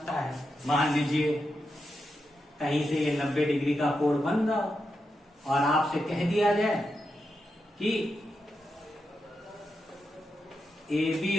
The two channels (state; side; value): normal; both; correlation 0.87